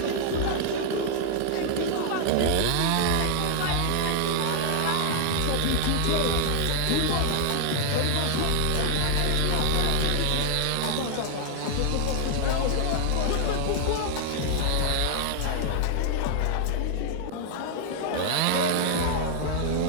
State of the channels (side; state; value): both; different; correlation 0.00